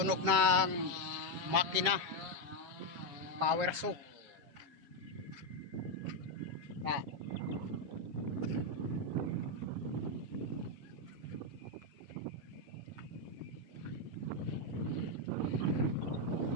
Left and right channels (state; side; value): late; left; 7.6 ms